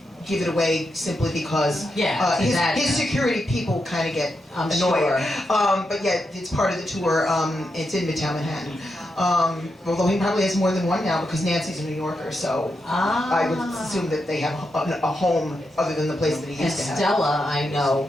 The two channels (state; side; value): normal; both; correlation 0.85